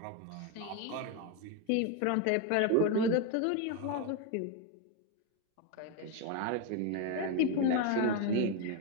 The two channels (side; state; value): both; different; correlation 0.02